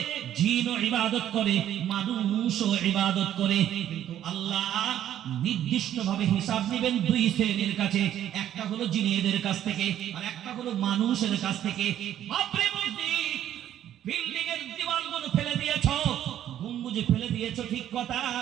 জিনও ইবাদত করে, মানুষও ইবাদত করে। কিন্তু আল্লাহ নির্দিষ্টভাবে হিসাব নেবেন দুই শ্রেণীর কাছে, একটা হলো জিনেদের কাছ থেকে আর একটা হলো মানুষের কাছ থেকে। বাপরে মসজিদ, বিল্ডিং এর দেওয়ালগুলো ফেলে দিয়েছো, গম্বুজে ফেলে দিয়েছো, ঠিক কথা,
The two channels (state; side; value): quieter; left; 11.3 dB